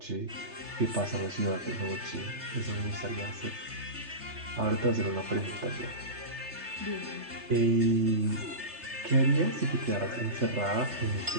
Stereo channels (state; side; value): late; left; 3.3 ms